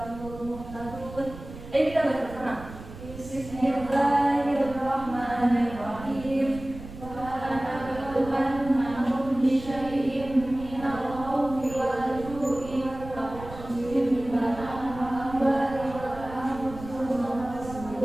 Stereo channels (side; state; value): right; noise; rumble, 14 dB below the sound